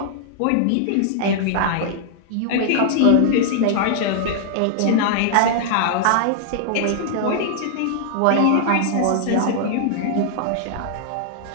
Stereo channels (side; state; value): both; different; correlation -0.01